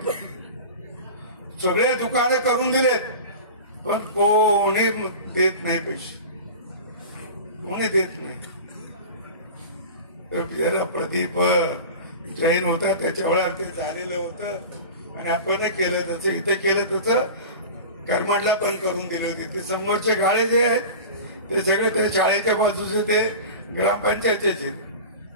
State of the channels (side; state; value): both; inverted; correlation -0.33